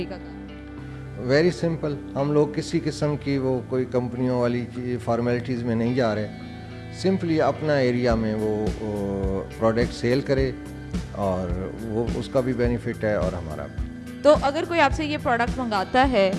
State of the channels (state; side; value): identical; both; correlation 1.00